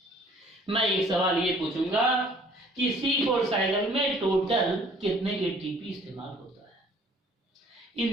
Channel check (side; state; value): both; normal; correlation 0.56